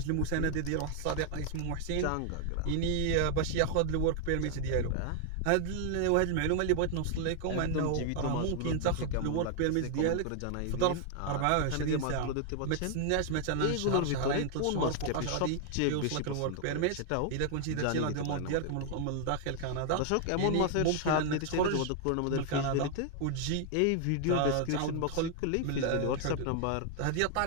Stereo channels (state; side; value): different; both; correlation 0.00